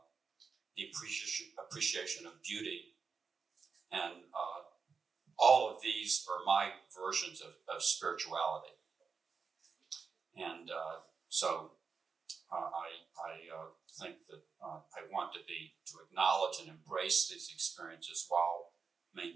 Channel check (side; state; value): left; quieter; 5.3 dB